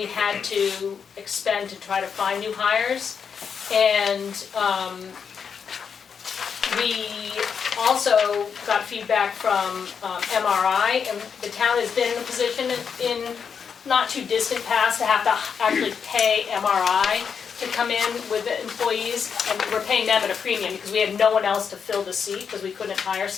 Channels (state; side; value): quieter; right; 6.6 dB